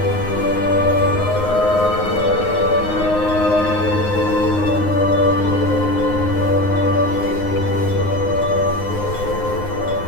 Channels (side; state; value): right; late; 9.7 ms